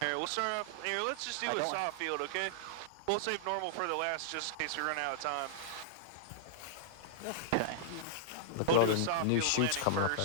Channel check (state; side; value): different; both; correlation -0.02